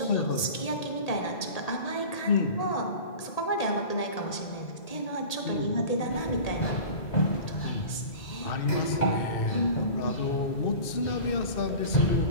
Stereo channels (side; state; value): right; late; 1.8 ms